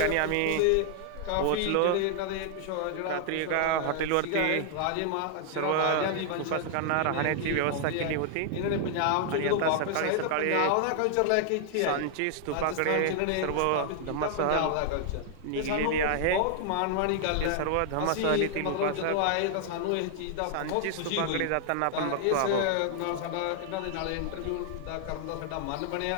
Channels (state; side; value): different; both; correlation 0.00